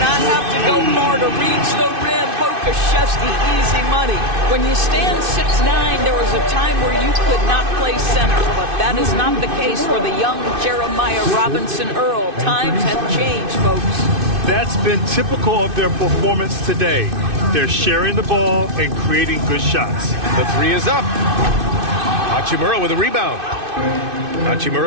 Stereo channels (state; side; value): late; left; 2.6 ms